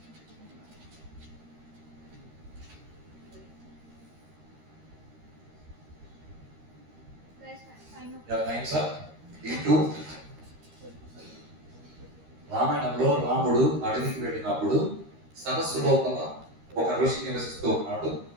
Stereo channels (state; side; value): late; left; 13 ms